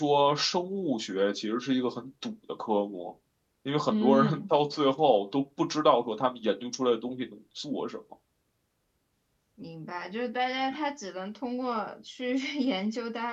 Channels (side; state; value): both; identical; correlation 1.00